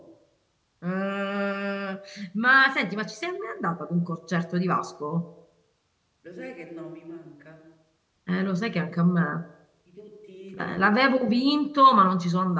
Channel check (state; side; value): identical; both; correlation 1.00